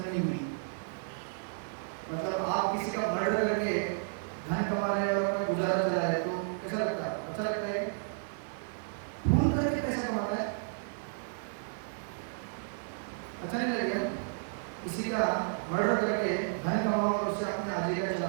हुई। मतलब आप किसी का मर्डर करके धन कमा रहे हैं और अपना गुजारा चला रहे हैं, तो कैसा लगता है? अच्छा लगता है? खून करके पैसा कमाता है, अच्छा नहीं लगेगा? किसी का मर्डर करके धन कमाओ और उससे अपने आजीविका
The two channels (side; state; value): left; silent; 56 dB below the other